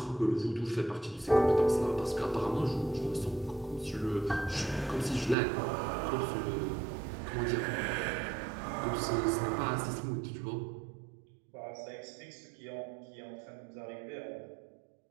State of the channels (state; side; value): drops out; left; at 5.4 s